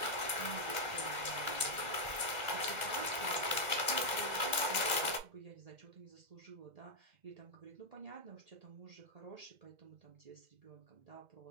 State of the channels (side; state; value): left; late; 2.0 ms